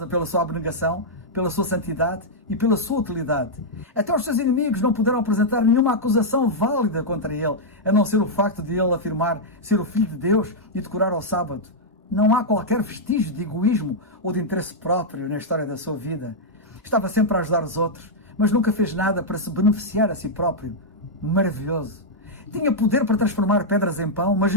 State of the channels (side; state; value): both; normal; correlation -0.05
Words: pela sua abnegação, pela sua santidade e pela sua utilidade. Até os seus inimigos não puderam apresentar nenhuma acusação válida contra ele, a não ser o facto de ele afirmar ser o Filho de Deus e decorar ao sábado. Não há qualquer vestígio de egoísmo ou de interesse próprio na história da sua vida. Estava sempre a ajudar os outros, mas nunca fez nada para se beneficiar a si próprio. Maravilhoso. Tinha poder para transformar pedras em pão, mas